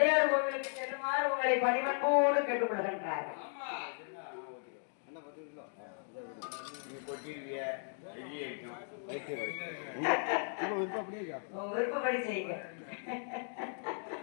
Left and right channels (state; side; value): silent; right; 54 dB below the other